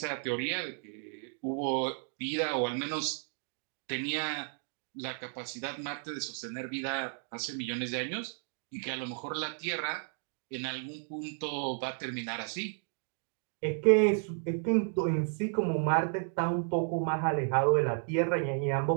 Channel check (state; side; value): silent; left; 56 dB below the other